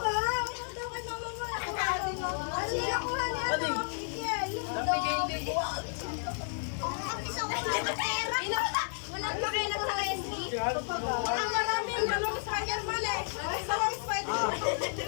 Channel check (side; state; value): right; silent; digital silence